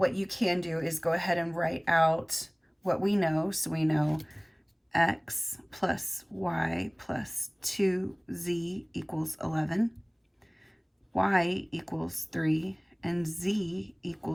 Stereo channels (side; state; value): both; identical; correlation 1.00